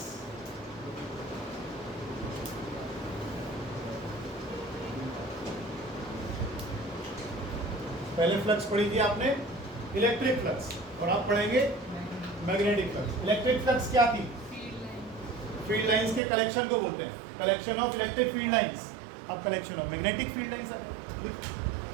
पहले flux पढ़ी थी आपने इलेक्ट्रिक फ्लक्स, और आप पढ़ेंगे मैग्नेटिक फ्लक्स. इलेक्ट्रिक फ्लक्स क्या थी? फील्ड लाइंस के कलेक्शन को बोलते हैं, collection of electric field lines. अब collection of magnetic field lines,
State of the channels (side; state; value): left; drops out; at 16.2 s